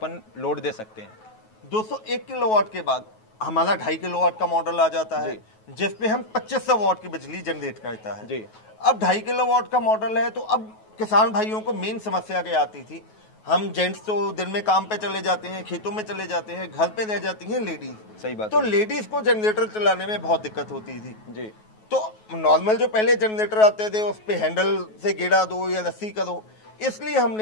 लोड दे सकते हैं? 201 किलोवाट के बाद हमारा 2.5 किलोवाट का मॉडल आ जाता है, जिसपे हम 2500 वाट की बिजली जनरेट करता है जी। अब 2.5 किलोवाट का मॉडल है, तो अब किसान भाइयों को मेन समस्या क्या आती थी, हम जेंट्स तो दिन में काम पे चले जाते हैं, खेतों में चले जाते हैं, घर पे रह जाती हैं लेडीज। सही बात। तो लेडीज को जनरेटर चलाने में बहुत दिक्कत होती थी जी। तो नॉर्मल जो पहले जनरेटर आते थे उस पे हैंडल से गेड़ा दो या रस्सी करो, इसलिए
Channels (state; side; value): late; right; 9.3 ms